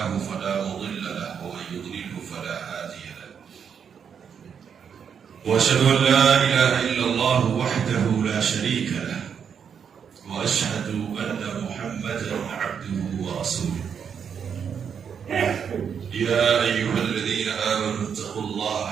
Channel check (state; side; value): quieter; left; 7.3 dB